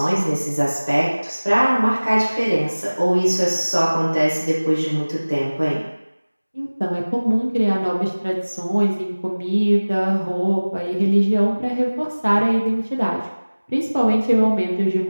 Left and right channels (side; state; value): both; inverted; correlation -1.00